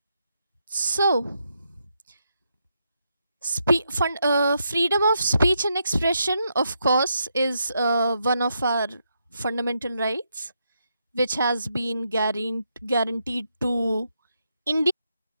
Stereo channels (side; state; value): both; inverted; correlation -0.81